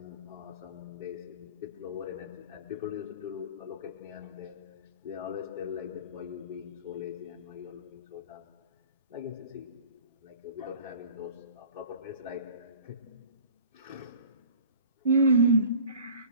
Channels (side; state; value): both; inverted; correlation -0.45